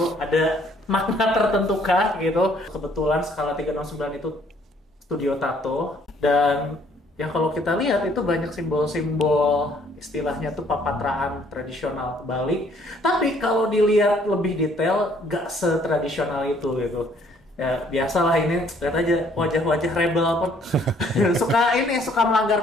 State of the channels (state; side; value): normal; both; correlation 0.63